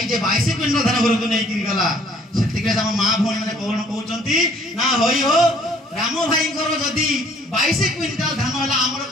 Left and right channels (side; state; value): both; normal; correlation 0.59